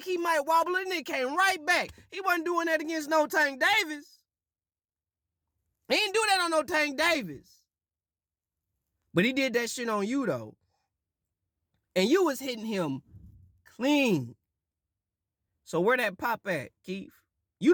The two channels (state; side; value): identical; both; correlation 1.00